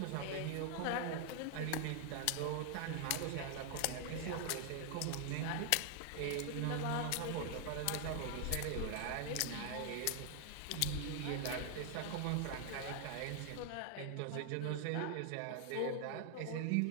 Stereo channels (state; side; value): different; both; correlation 0.00